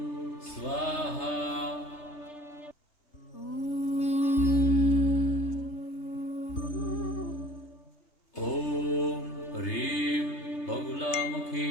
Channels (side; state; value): right; late; 3.3 ms